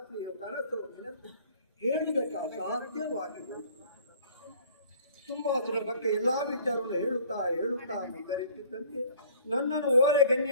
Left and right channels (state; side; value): inverted; both; correlation -0.53